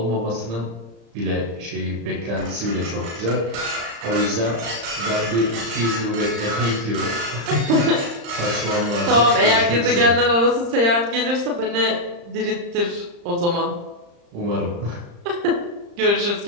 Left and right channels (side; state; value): left; late; 35 ms